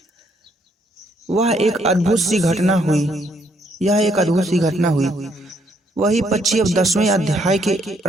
वह एक अद्भुत सी घटना हुई। यह एक अद्भुत सी घटना हुई। वही पक्षी अब 10वें अध्याय के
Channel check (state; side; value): normal; both; correlation 0.71